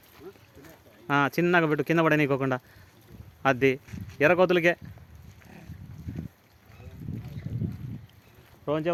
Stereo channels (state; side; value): identical; both; correlation 1.00